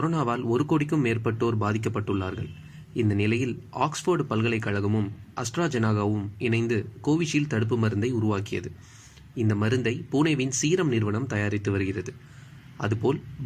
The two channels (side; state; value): both; identical; correlation 1.00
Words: 1 கோடிக்கும் மேற்பட்டோர் பாதிக்கப்பட்டுள்ளார்கள். இந்த நிலையில் ஆக்ஸ்போர்டு பல்கலைக்கழகமும் அஸ்ட்ராஜெனகாவும் இணைந்து கோவிஷீல்டு தடுப்பு மருந்தை உருவாக்கியது. இந்த மருந்தை புனேவின் சீரம் நிறுவனம் தயாரித்து வருகிறது. அதுபோல்